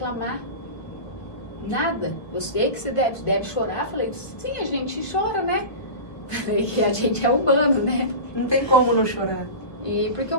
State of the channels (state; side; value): late; right; 1.5 ms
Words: Nada. Eu sei que você deve chorar. Falei, sim, a gente chora, né? Falei que a gente é humano, né? Não tem como não chorar. E porque eu